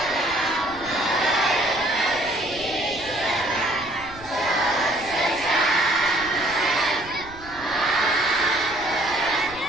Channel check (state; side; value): noise; right; rumble, 19 dB below the sound